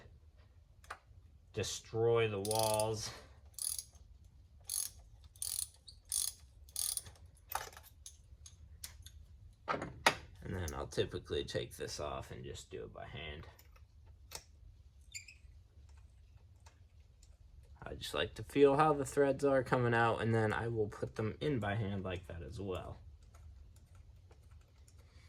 destroy the walls. And then I'll typically take this off and just do it by hand. I just like to feel how the threads are coming out, and then I will put them in by hand like that as well.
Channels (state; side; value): identical; both; correlation 1.00